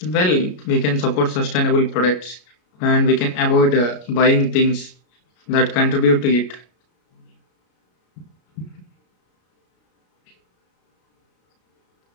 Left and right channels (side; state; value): right; late; 33 ms